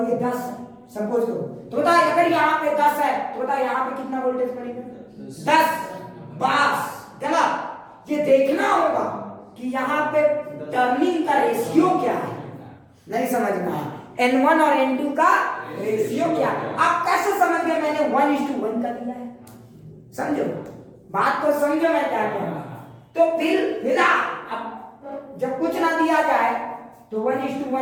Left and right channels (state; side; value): identical; both; correlation 1.00